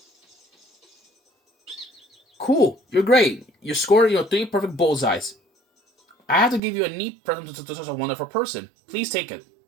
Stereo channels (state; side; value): drops out; left; at 6.6 s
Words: Cool, you're great. You scored 3 perfect bullseyes. I have to give you a neat present to such a wonderful person. Please take it.